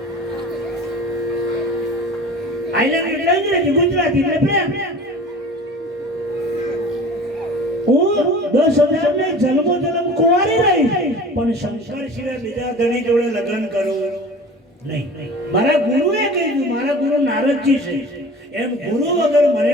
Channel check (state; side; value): normal; both; correlation 0.40